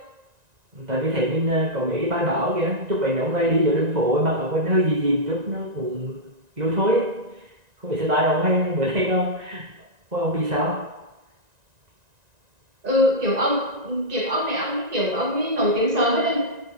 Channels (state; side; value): late; left; 1.9 ms